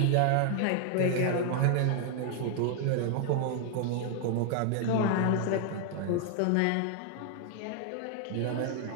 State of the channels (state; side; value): different; both; correlation 0.00